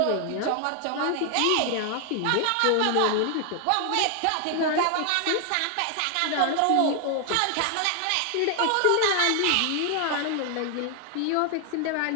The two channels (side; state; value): both; different; correlation 0.00